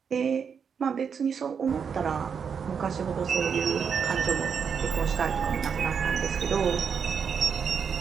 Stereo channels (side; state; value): left; quieter; 6.7 dB